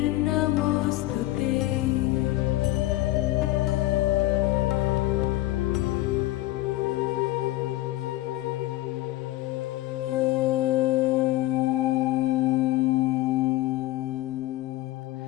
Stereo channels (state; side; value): quieter; right; 16.7 dB